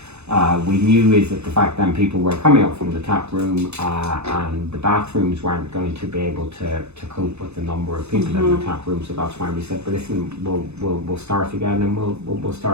We knew is that the fact then people were coming up from the tap room, and the bathrooms weren't going to be able to cope with the number of people in the tap room. So that's why we said, but listen, we'll start again, and we'll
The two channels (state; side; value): late; left; 0.81 ms